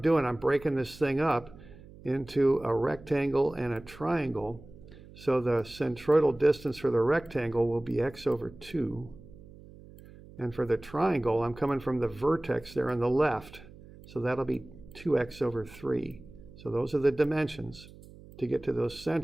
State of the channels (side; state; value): right; noise; hum, 20 dB below the sound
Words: doing, I'm breaking this thing up into a rectangle and a triangle. So the centroidal distance for the rectangle will be x over 2. And for the triangle, I'm coming from the vertex there on the left. So that'll be 2x over 3. So those are the dimensions to get to those